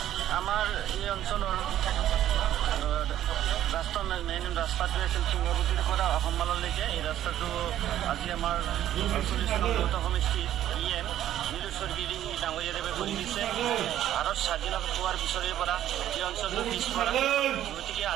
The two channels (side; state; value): left; quieter; 12.0 dB